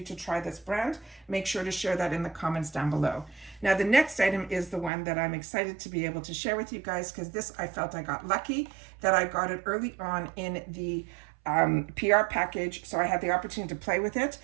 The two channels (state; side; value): drops out; left; at 4.9 s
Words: to try this brand, make sure to share that in the comments down below. Now, the next item is the one that I'm excited to be able to share with you guys, because this, I felt I got lucky that I got it early on in the PR package, so I had the opportunity to play with it